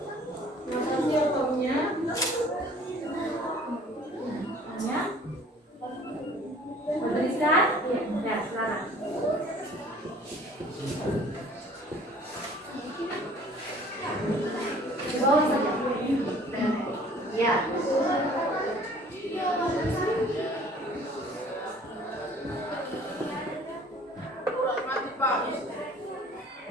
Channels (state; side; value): normal; both; correlation 0.52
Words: Notasi atomnya Tuliskan? Iya, ya, sekarang. Di bawah saja. Ya.